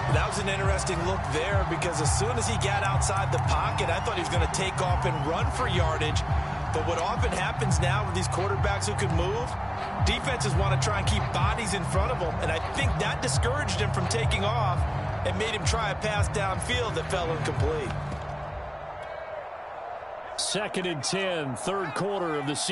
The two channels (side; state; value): both; identical; correlation 1.00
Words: That was an interesting look there, because as soon as he got outside the pocket, I thought he was going to take off and run for yardage. But what often happens now with these quarterbacks who can move, defenses want to try and keep bodies in front of them. And I think that discouraged him from taking off and made him try a pass downfield that fell incomplete. 2nd and 10, third quarter of the